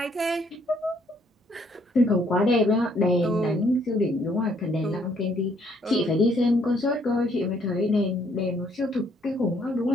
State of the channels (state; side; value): normal; both; correlation 0.67